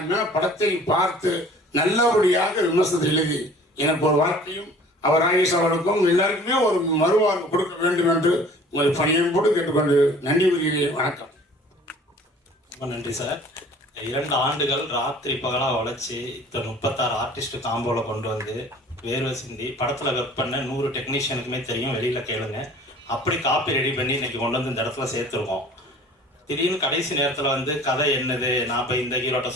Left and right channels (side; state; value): both; normal; correlation 0.49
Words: படத்தை பார்த்து நல்லபடியாக விமர்சனத்தை எழுதி எனக்கு ஒரு வார்த்தையும் அவர் ஆயுஷ் அவர்களுக்கும் எல்லாருக்குமே ஒரு மறுவாழ்வு கொடுக்க வேண்டும் என்று உங்களை பணியோடு கேட்டுக்கொண்டு நன்றி கூறுகிறேன். வணக்கம். ரொம்ப நன்றி சார். 2 ஆண்டுகள் ராத்திரி பகலாக உழைச்சி 36 ஆர்டிஸ்ட் காம்போவில் கொண்டு வந்து வேர்வை சிந்தி படத்தில் ஒர்க் பண்ண 100 டெக்னீஷியனுக்குமே தெரியும், வெளியில் கேளுங்க. அப்படி காப்பி ரெடி பண்ணி இன்னைக்கு கொண்டு வந்து இந்த இடத்துல சேர்த்துருக்கோம். திடீர்னு கடைசி நேரத்தில் கதை என்னது, நான் இப்போ இந்த ஹீரோட்ட